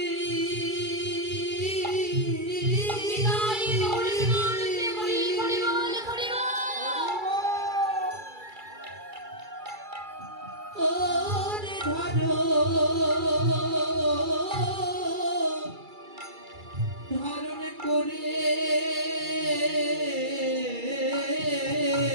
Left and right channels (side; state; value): left; late; 2.3 ms